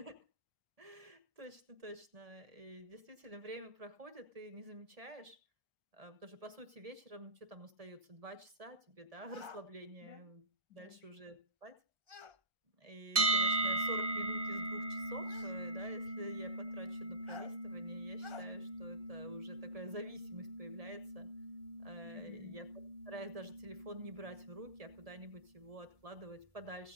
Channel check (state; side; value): late; left; 1.7 ms